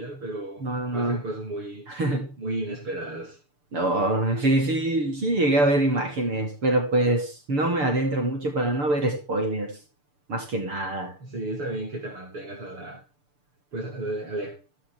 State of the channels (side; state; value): left; late; 6.8 ms